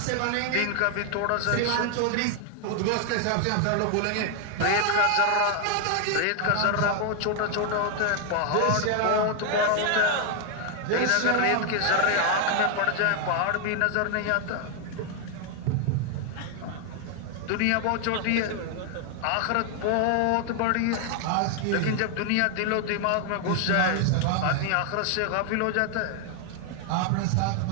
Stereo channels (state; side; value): different; both; correlation 0.00